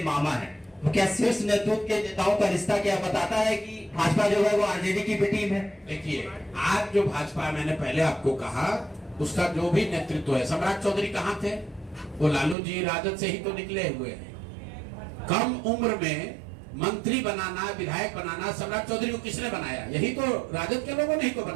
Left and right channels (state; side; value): drops out; left; at 12.6 s